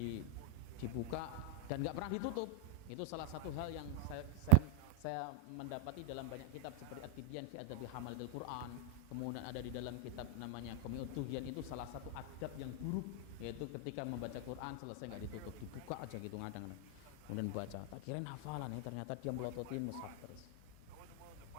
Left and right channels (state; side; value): different; both; correlation 0.00